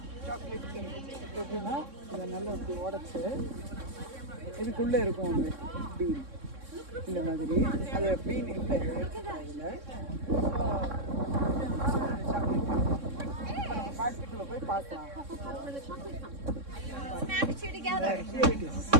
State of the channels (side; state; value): left; late; 3.6 ms